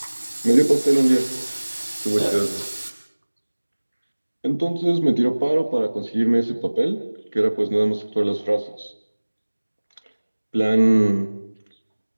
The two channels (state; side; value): inverted; both; correlation -1.00